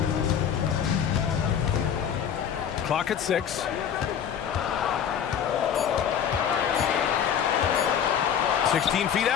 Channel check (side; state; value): right; quieter; 8.4 dB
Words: Clock at 6. 16 feet